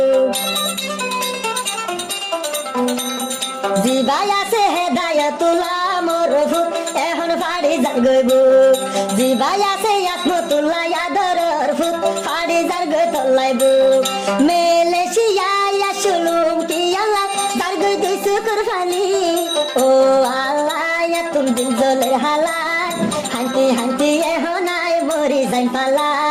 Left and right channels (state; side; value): identical; both; correlation 1.00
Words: জিবাই আছে হেদায়তুল্লাহ মরফুত এখন ফাড়ি যার গইব জিবাই আছে আসমতুল্লাহ ইয়াদর ফুত ফাড়ি যার গই তল্লাইব মেলেশিয়া শুলুম কি আল্লাহ যার গই দুই শুকুর ফানি ও আল্লাহ তুম দিল জলের হালায় হাইতে এখন আয় মরি যাই পালা